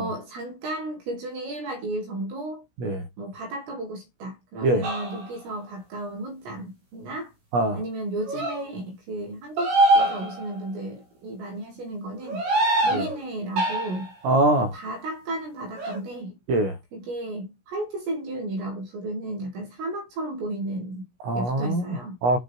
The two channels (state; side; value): late; left; 16 ms